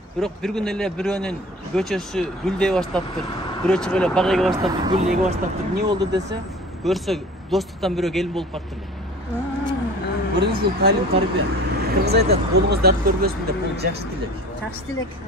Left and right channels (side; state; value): both; normal; correlation 0.42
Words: Бирок бир күн эле бирөөнүн көчөсү гүлдөй баштаптыр. Бирөө чыгып эле бак эге баштаптыр, гүл эге баштаптыр. Эмне болду десе, көрсө достуктан бирөө келин болуп калыптыр. Көрүңүз, бул талим тарбия. Кыргыз айтат, колуңуз дарт көрбөсүн деп, бул жакшы тилек. Жакшы тилек.